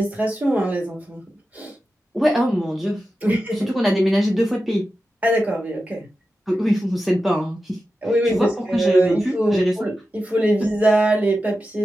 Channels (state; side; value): normal; both; correlation 0.92